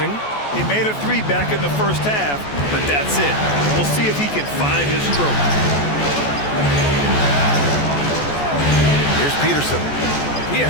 He made a 3 back in the first half, but that's it. We'll see if he can find his stroke. Here's Peterson. He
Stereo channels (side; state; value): right; late; 14 ms